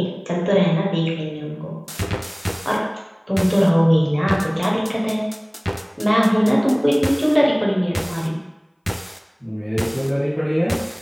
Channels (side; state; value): both; identical; correlation 1.00